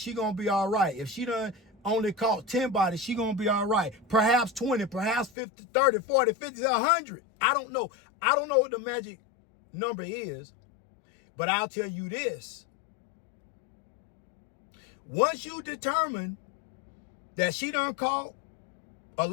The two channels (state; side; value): drops out; right; at 5.3 s